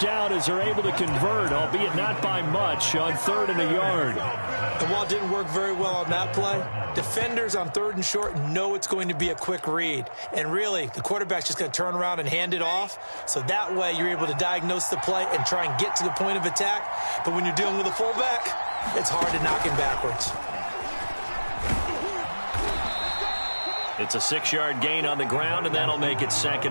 as they're able to convert, albeit not by much, on 3rd and a yard. And while it didn't work very well on that play, defenders on 3rd and short know it's going to be a quick read. And really, the quarterback's just going to turn around and hand it off. So that way, you're able to diagnose the play and try and get to the point of attack. But when you're dealing with a fullback, it's hard to knock him backwards. It's a 6-yard gain on the ground, and that'll make it 2nd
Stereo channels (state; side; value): inverted; both; correlation -1.00